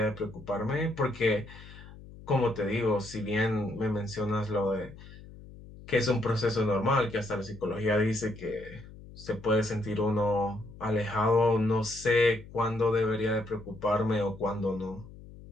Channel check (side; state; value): left; noise; hum, 18 dB below the sound